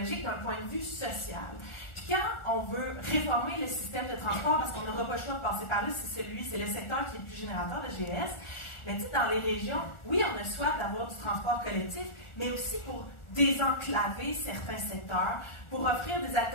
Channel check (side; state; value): right; late; 1.4 ms